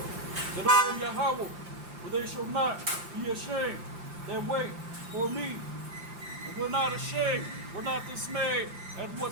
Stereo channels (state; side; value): late; left; 5.8 ms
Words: that I am Yahweh, for they shall not be ashamed that wait for me. And we're not ashamed, we're not dismayed at